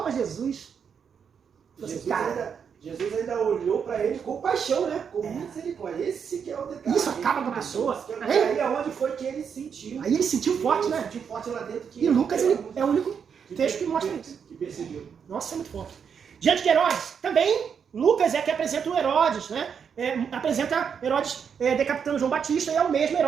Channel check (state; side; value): quieter; left; 7.0 dB